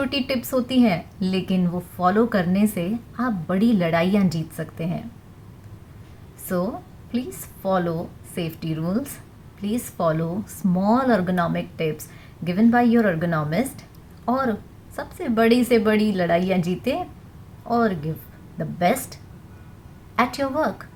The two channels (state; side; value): identical; both; correlation 1.00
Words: टिप्स होती हैं, लेकिन वो फॉलो करने से आप बड़ी लड़ाइयाँ जीत सकते हैं। So please follow safety rules, please follow small ergonomic tips given by your ergonomist, और सबसे बड़ी से बड़ी लड़ाइयाँ जीते और give the best at your work.